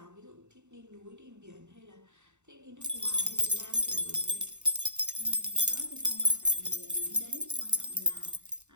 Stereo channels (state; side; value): late; left; 0.83 ms